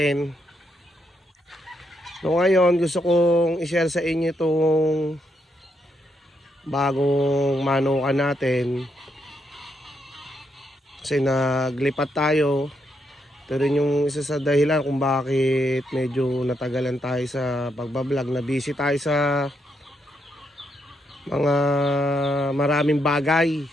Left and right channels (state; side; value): normal; both; correlation 0.79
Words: So ngayon gusto kong i-share sa inyo itong bagong manukan natin. Kasi naglipat tayo. Ito rin yung isa sa dahilan kung bakit medyo natagalan tayo sa pagbablog. Na busy tayo sa mga maraming bagay.